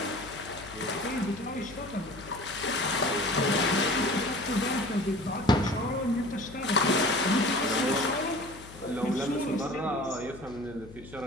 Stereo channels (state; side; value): noise; left; hum, 17 dB below the sound